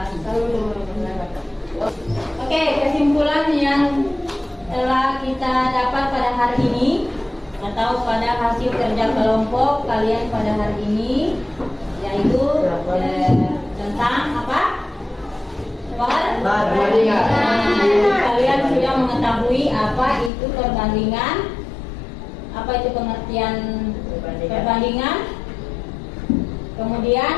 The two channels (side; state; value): right; drops out; at 20.3 s